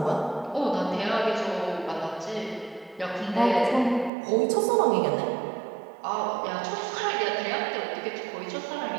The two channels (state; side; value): drops out; left; at 4.1 s